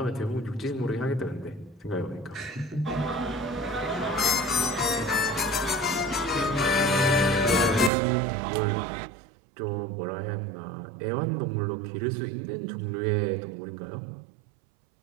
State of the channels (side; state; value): left; drops out; at 7.9 s